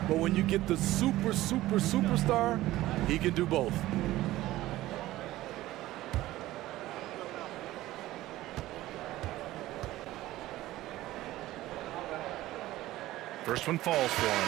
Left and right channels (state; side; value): quieter; left; 16.2 dB